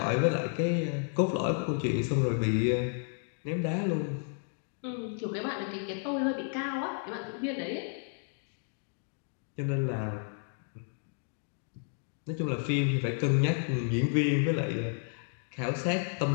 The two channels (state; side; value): silent; right; 55 dB below the other